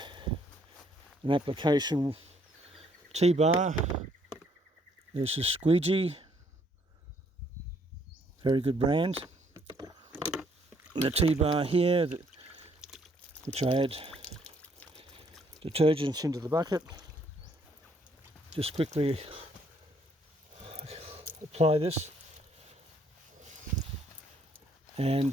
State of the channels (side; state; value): both; normal; correlation 0.67